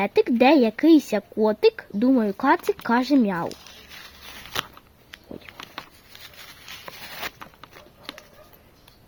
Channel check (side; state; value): both; identical; correlation 1.00